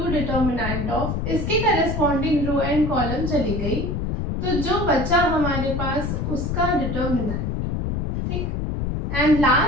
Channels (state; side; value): noise; left; rumble, 2 dB below the sound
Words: determinant of, इसके करस्पॉन्डिंग रो एंड कॉलम चली गई, तो जो बचा हमारे पास उसका डिटर्मिनेंट, ठीक। And